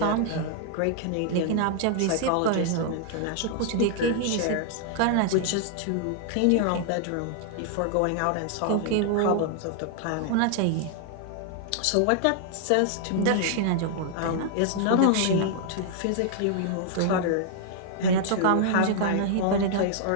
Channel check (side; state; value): both; different; correlation -0.01